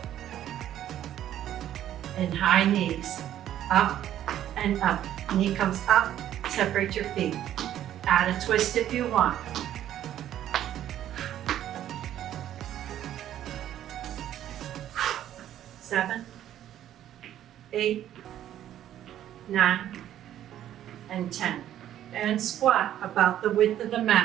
And high knees, up and up. Knee comes up, separate your feet. Add a twist if you want. Seven, 8, 9, and 10. And squat about the width of the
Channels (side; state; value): left; quieter; 11.6 dB